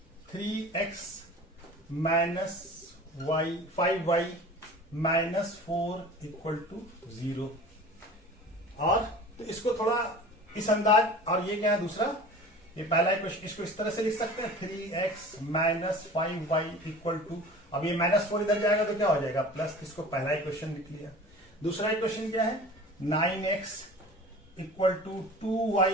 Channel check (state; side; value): normal; both; correlation 0.41